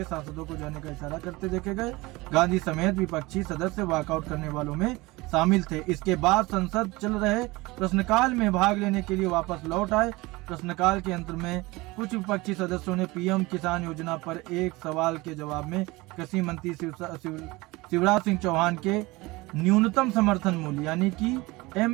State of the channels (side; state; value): left; quieter; 22.1 dB